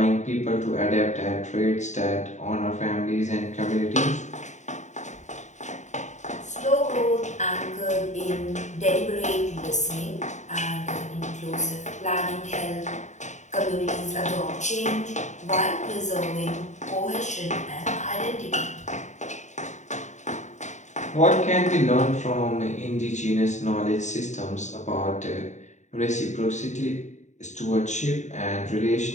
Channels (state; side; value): late; right; 0.34 ms